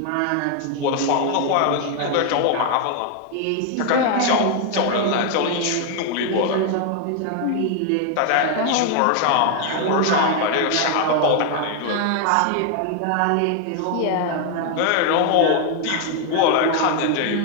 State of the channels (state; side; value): different; both; correlation 0.00